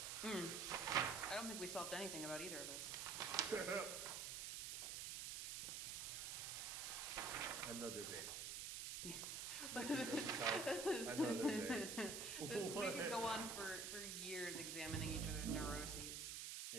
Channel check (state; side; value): noise; right; hiss, 3 dB below the sound